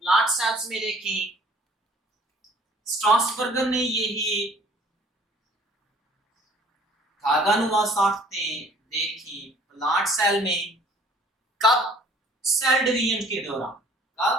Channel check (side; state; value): both; normal; correlation 0.55